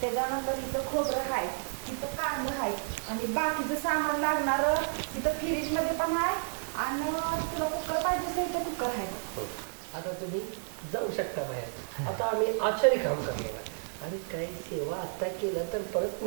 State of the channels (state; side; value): silent; left; 57 dB below the other